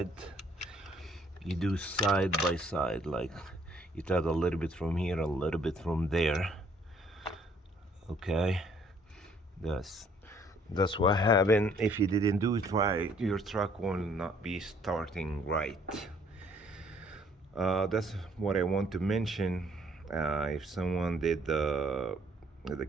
you do side by side. Like you tie a little bit from here, a little bit from there. Okay, that's what happened. If you didn't do it right, your truck will not be starting right. That's what I want to mention. If someone did the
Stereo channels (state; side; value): normal; both; correlation 0.63